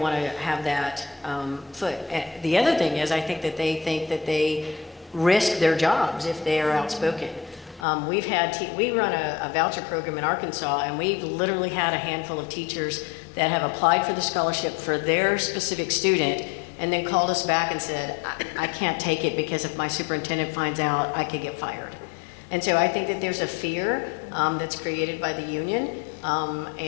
want to have that foot. The other thing is, I think that they risk their jobs if they are outspoken. We run a voucher program in Arkansas, and we've literally had a handful of teachers that have applied for the scholarship for their specific student and then called us back and said, I can't take it because if my superintendent finds out, I could get fired. And so I think that there's a fear that's created by the union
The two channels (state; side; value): drops out; right; at 7.9 s